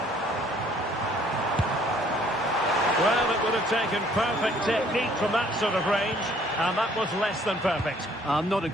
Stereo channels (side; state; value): both; normal; correlation 0.60